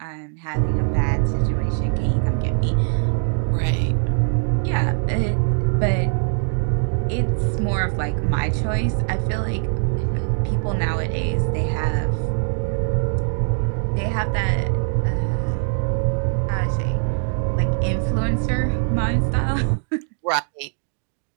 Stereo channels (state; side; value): silent; left; 63 dB below the other